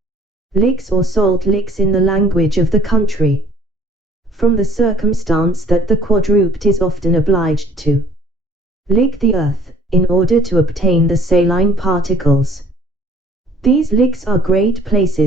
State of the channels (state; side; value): normal; both; correlation 0.56